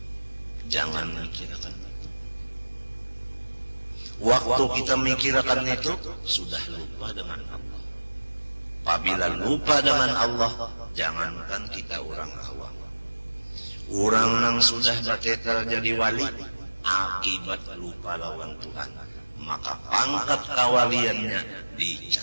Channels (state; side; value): inverted; both; correlation -1.00